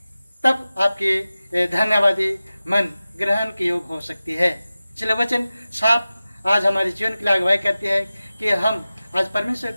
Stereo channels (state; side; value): inverted; both; correlation -0.95